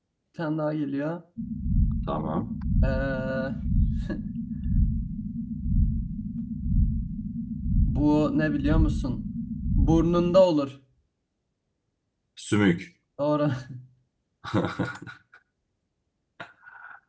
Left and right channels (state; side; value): identical; both; correlation 1.00